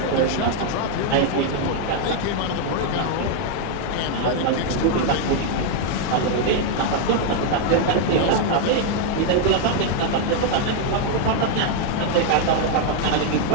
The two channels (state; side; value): different; both; correlation 0.00